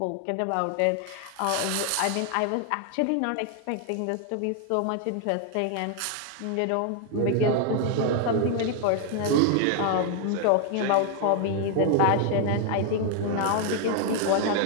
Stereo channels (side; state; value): both; different; correlation 0.00